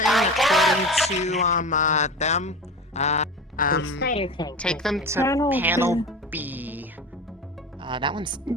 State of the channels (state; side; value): normal; both; correlation 0.30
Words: according to them. Snyder tank. Take them to Panel panel B. That one's